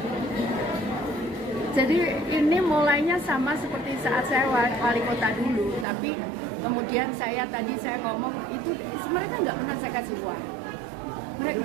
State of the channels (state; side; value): drops out; left; at 5.9 s